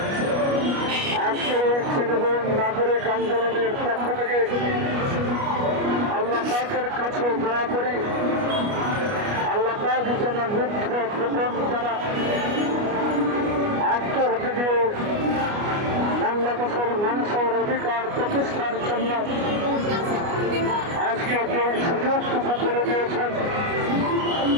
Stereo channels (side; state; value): left; late; 29 ms